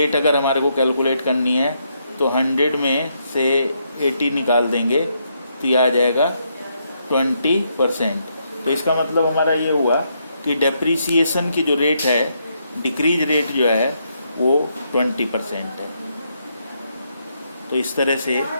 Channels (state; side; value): inverted; both; correlation -0.77